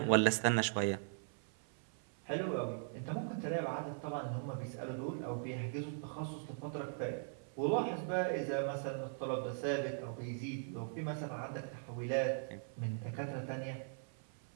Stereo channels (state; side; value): silent; left; 51 dB below the other